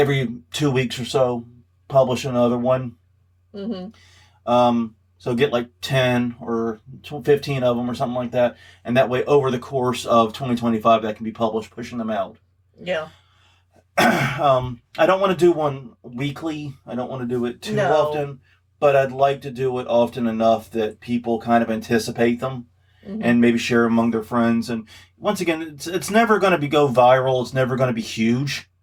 2 weeks or so, publish another one. So get like 10 or 15 of them or something like that. And that way, over the course of 2025, that can be published, pushing them out. Yeah. I don't want to do one weekly. I don't want to do it too often. But I'd like to do it often enough that people kind of anticipate them. And maybe share among their friends. And once again, it's never going to go viral. It's never going to be huge.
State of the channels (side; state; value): both; identical; correlation 1.00